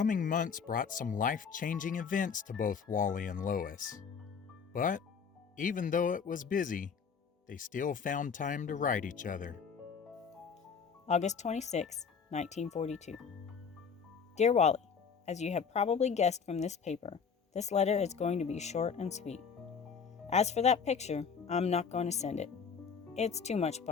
months brought some life-changing events to both Wally and Lois. But even though it was busy, they still found time to write each other. August 26, 1942. Dear Wally, as you have probably guessed from this paper, this letter is going to be short and sweet. As for that picture, I'm not going to send it. It's too much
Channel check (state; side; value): quieter; right; 6.2 dB